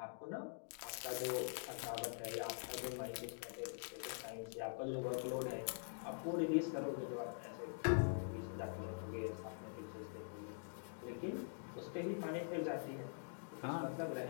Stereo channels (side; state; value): right; silent; digital silence